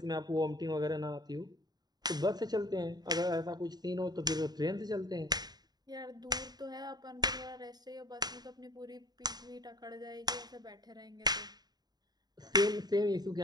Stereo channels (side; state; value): left; late; 0.20 ms